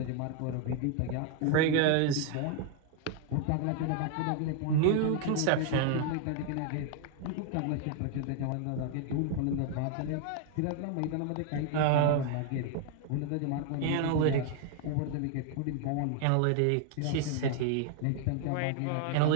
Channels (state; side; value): different; both; correlation 0.00